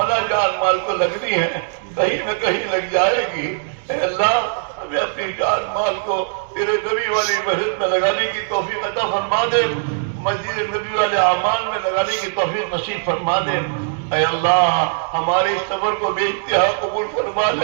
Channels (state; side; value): silent; left; digital silence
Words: جان مال کو لگنی ہے، کہیں نہ کہیں لگ جائے گی، اے اللہ ہمیں اپنی جان مال کو تیرے نبی والی مسجد میں لگانے کی توفیق عطا فرما دے، مسجد نبی والے اعمال میں لگانے کی توفیق نصیب فرما دے۔ اے اللہ ہمارے اس سفر کو بے انتہا قبول فرما